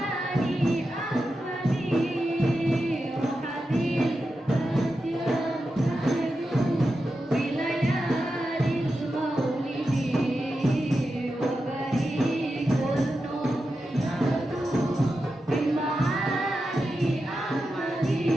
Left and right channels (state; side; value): normal; both; correlation 0.90